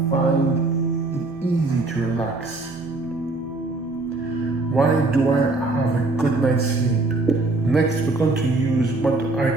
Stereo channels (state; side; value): quieter; left; 3.1 dB